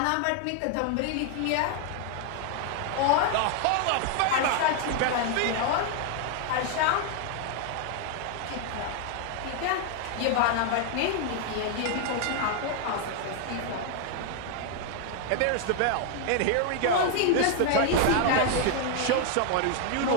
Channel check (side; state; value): both; different; correlation 0.00